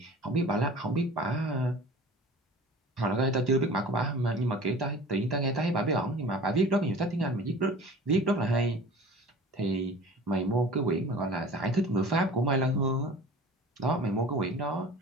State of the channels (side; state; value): both; normal; correlation 0.42